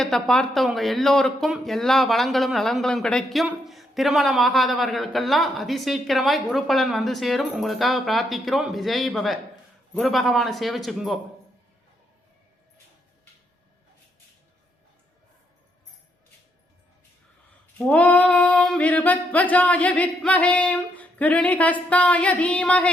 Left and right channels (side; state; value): both; normal; correlation 0.76